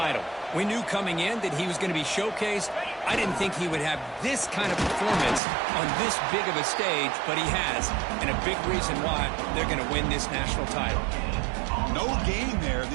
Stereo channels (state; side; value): drops out; left; at 5.4 s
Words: We knew coming in that he was going to be showcased. I didn't think he would have this kind of performance on this big of a stage, but he has, and a big reason why they're going to win this national title. No gain there.